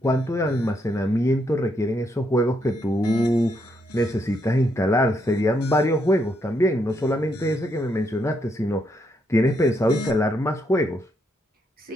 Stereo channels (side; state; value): both; normal; correlation 0.77